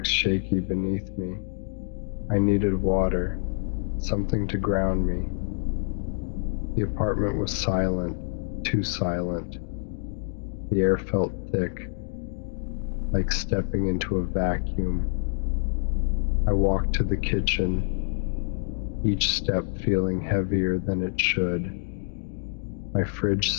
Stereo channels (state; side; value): silent; right; digital silence